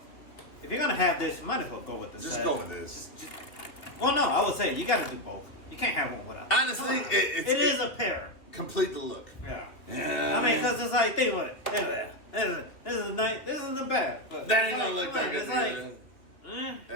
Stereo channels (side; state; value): right; late; 2.8 ms